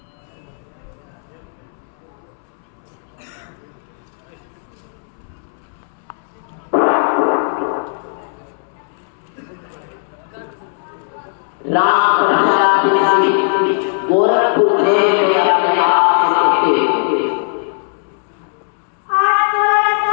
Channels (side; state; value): right; silent; 67 dB below the other